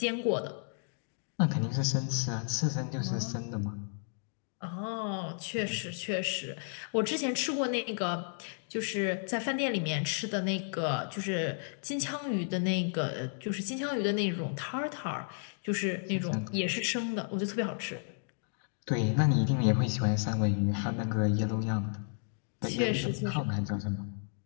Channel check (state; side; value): silent; right; digital silence